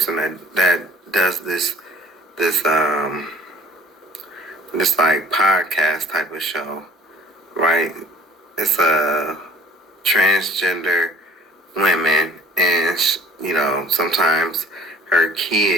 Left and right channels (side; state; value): both; normal; correlation 0.51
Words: that does this like podcast type of show, right? It's a transgender women, and sometimes her